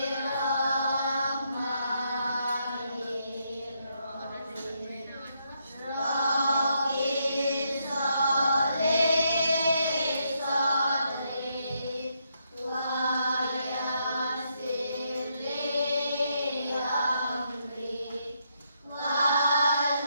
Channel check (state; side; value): inverted; both; correlation -0.77